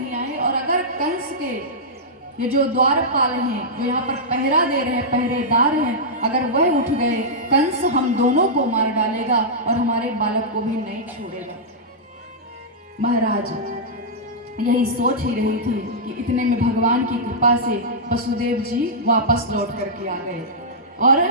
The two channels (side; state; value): both; normal; correlation -0.11